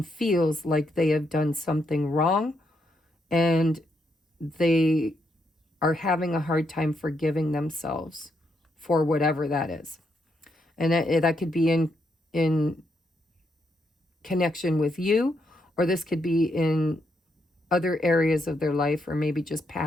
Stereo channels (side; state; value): both; normal; correlation 0.78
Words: feels like they have done something wrong and they are having a hard time forgiving themselves for whatever that is. And that could be in connection with you, or this could be in other areas of their life, or maybe just